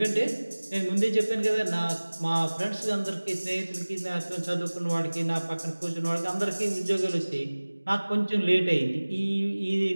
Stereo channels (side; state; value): both; inverted; correlation -1.00